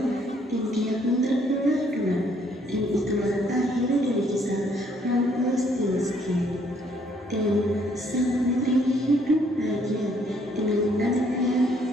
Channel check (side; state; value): both; normal; correlation 0.66